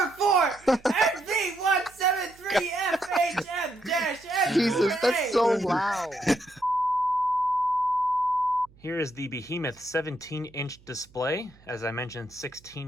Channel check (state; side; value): noise; right; hum, 27 dB below the sound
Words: NV173FHM-N. Jesus, that's so loud. Here is the Behemoth 17-inch display. As I mentioned,